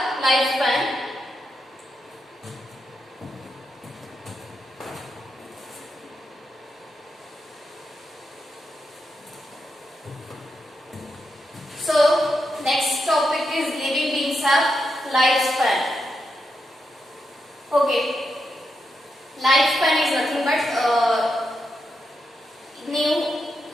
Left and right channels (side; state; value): both; normal; correlation 0.84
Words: lifespan. So, next topic is living beings have lifespan. Okay, lifespan is nothing but ನೀವು